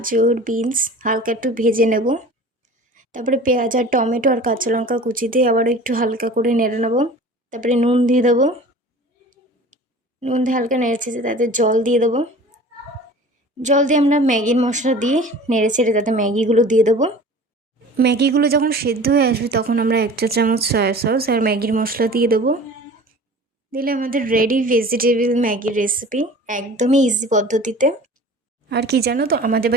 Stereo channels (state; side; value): normal; both; correlation 0.42